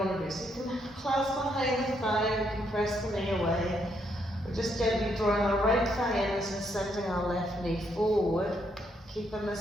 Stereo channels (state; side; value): normal; both; correlation 0.75